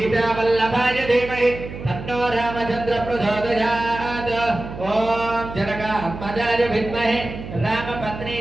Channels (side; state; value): right; noise; hum, 11 dB below the sound